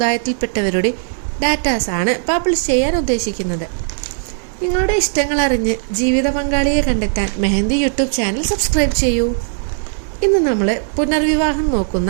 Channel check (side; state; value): left; silent; digital silence